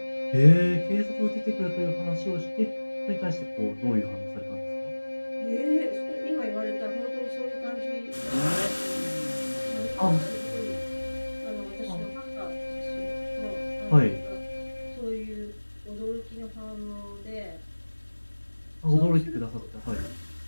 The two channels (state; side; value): inverted; both; correlation -1.00